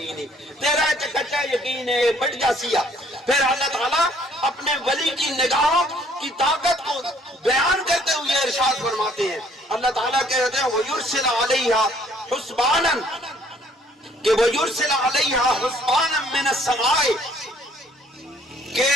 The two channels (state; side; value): normal; both; correlation 0.61